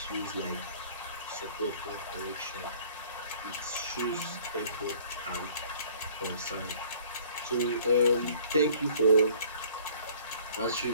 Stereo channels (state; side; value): inverted; both; correlation -0.53